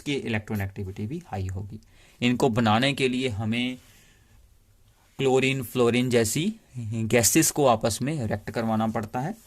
इलेक्ट्रॉनेगेटिविटी भी हाई होगी। इनको बनाने के लिए हमें क्लोरीन फ्लोरीन जैसी गैसेस को आपस में रिएक्ट करवाना पड़ता है।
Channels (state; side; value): identical; both; correlation 1.00